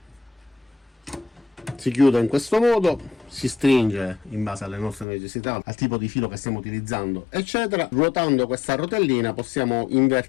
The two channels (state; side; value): drops out; right; at 5.1 s